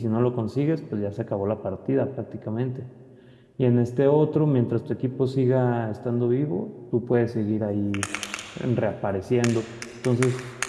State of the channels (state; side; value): identical; both; correlation 1.00